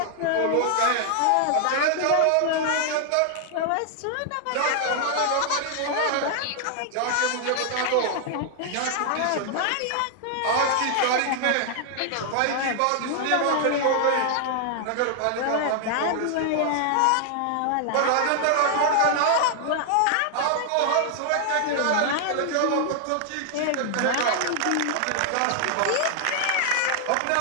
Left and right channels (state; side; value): different; both; correlation 0.00